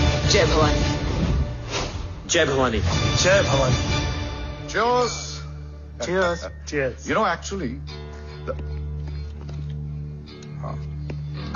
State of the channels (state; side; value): identical; both; correlation 1.00